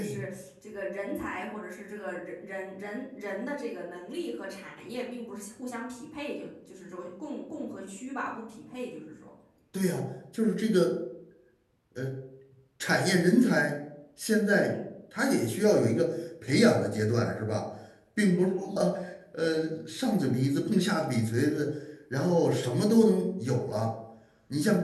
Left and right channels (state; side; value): identical; both; correlation 1.00